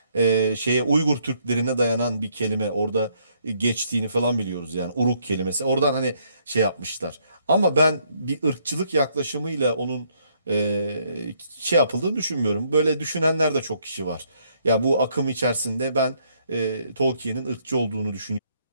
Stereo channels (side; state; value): both; inverted; correlation -0.69